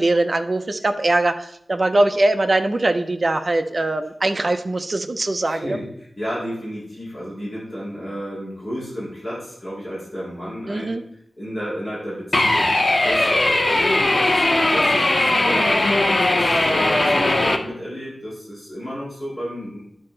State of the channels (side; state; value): both; normal; correlation 0.95